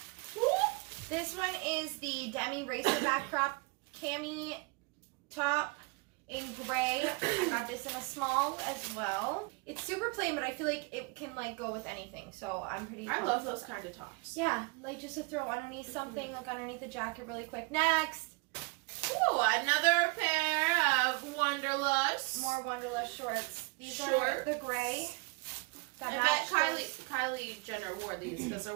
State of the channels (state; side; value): quieter; left; 30.0 dB